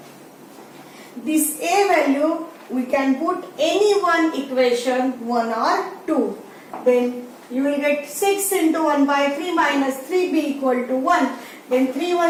This a value we can put any one equation 1 or 2. Then you will get 6 into 1 by 3 minus 3b equal to 1. Then 3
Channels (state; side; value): identical; both; correlation 1.00